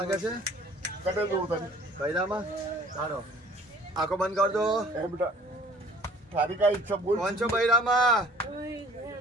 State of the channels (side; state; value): both; normal; correlation 0.52